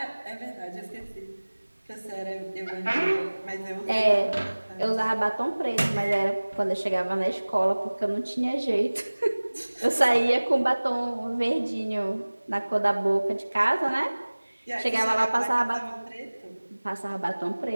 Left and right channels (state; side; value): inverted; both; correlation -1.00